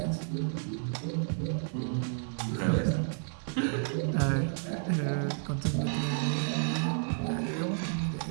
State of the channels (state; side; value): silent; left; 57 dB below the other